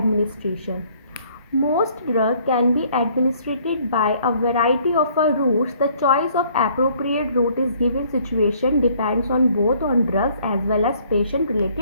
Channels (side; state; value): both; inverted; correlation -0.61